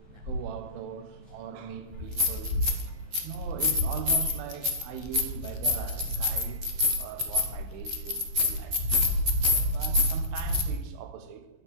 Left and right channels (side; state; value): left; late; 15 ms